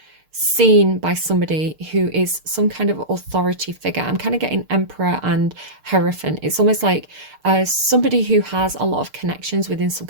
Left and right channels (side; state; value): left; late; 6.6 ms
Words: seen by somebody who is some kind of authority figure. I'm kind of getting emperor and hierophant. It's almost like somebody who has a lot of connections within some